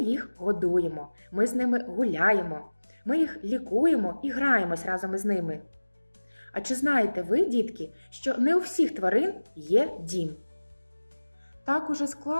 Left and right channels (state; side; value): inverted; both; correlation -1.00